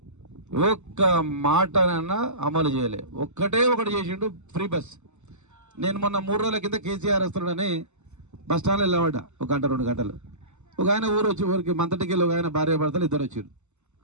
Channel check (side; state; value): left; late; 0.83 ms